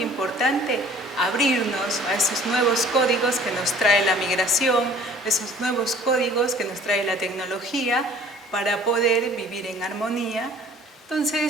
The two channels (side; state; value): both; normal; correlation 0.51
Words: importante abrirnos a esos nuevos códigos que nos trae la migración, esos nuevos códigos que nos trae la tecnología para poder vivir en armonía.